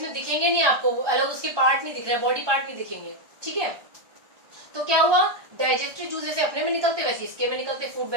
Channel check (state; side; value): late; left; 1.2 ms